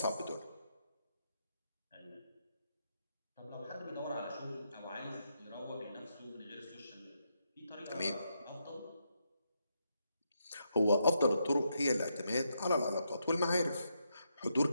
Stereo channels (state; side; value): inverted; both; correlation -0.81